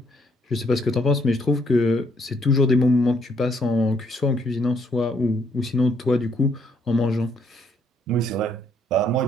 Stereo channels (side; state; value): both; normal; correlation 0.69